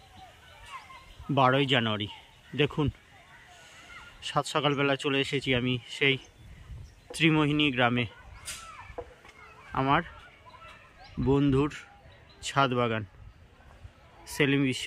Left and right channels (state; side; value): identical; both; correlation 1.00